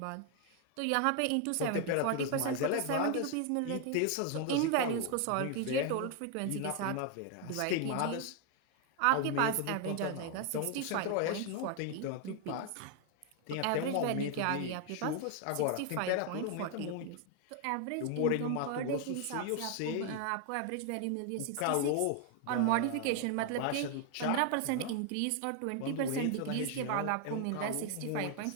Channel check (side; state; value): both; different; correlation 0.00